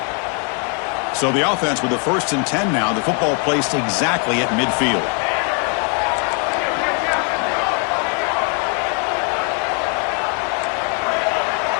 So the offense with the 1st and 10 now. The football placed exactly at midfield.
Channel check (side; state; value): right; quieter; 37.4 dB